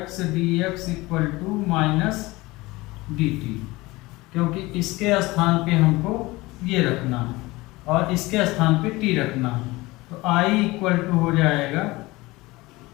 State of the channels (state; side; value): quieter; right; 21.1 dB